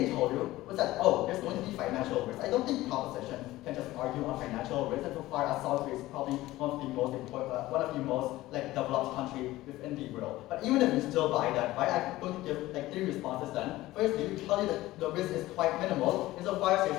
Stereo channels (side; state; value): right; quieter; 17.1 dB